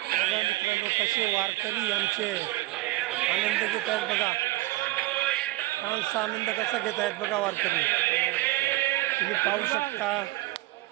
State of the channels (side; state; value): left; quieter; 18.7 dB